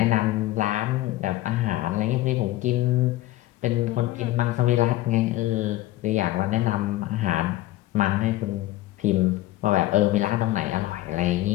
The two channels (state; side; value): quieter; right; 16.4 dB